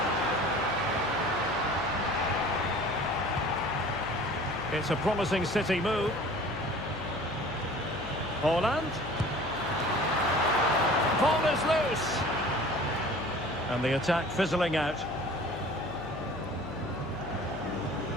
It's a promising City move. Holland. Ball is loose. And the attack fizzling out.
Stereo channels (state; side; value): noise; left; hum, 11 dB below the sound